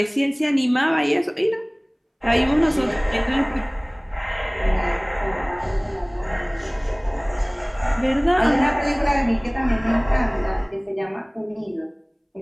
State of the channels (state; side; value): identical; both; correlation 1.00